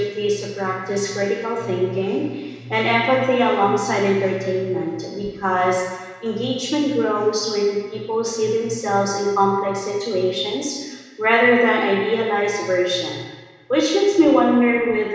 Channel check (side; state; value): both; identical; correlation 1.00